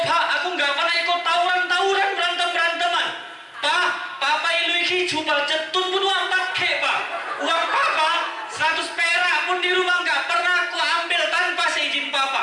aku nggak pernah ikut tawuran, berantem-beranteman. Pak, Papa ilu iki jubal jetun pun wampat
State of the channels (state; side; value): identical; both; correlation 1.00